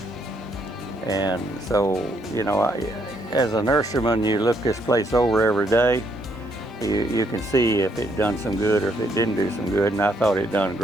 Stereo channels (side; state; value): both; normal; correlation 0.72